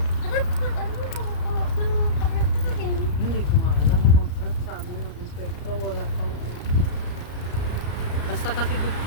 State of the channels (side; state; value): right; late; 34 ms